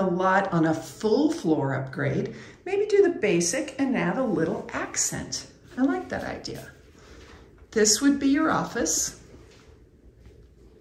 lot on a full floor upgrade, maybe do the basic and add a little accent. I like that idea. This would be your office.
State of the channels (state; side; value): identical; both; correlation 1.00